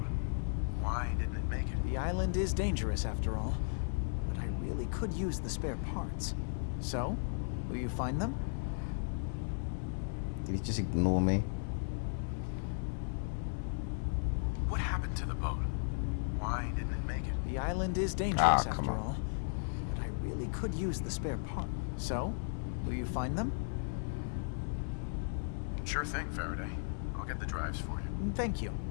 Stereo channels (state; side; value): silent; right; digital silence